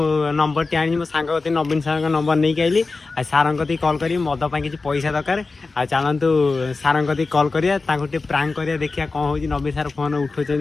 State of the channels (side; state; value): right; quieter; 3.9 dB